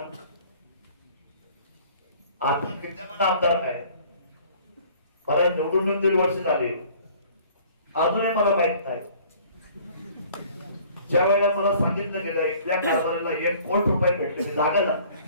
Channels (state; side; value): inverted; both; correlation -0.52